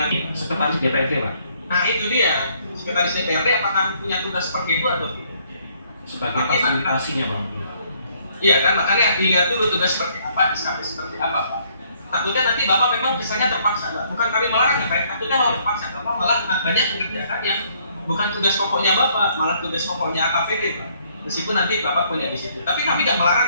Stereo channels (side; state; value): both; inverted; correlation -0.66